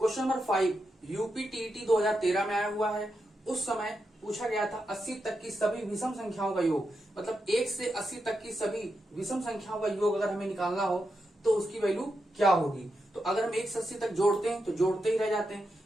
नंबर 5 यूपी टीईटी 2013 में आया हुआ है। उस समय पूछा गया था 80 तक की सभी विषम संख्याओं का योग, मतलब 1 से 80 तक की सभी विषम संख्याओं का योग अगर हमें निकालना हो तो उसकी वैल्यू क्या होगी। तो अगर हम 1 से 80 तक जोड़ते हैं तो जोड़ते ही रह जाते हैं,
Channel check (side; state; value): both; normal; correlation 0.86